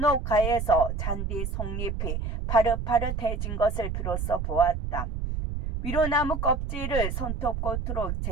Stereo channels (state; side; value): noise; right; rumble, 3 dB below the sound